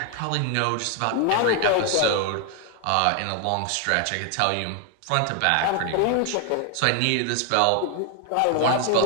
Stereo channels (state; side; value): different; both; correlation 0.00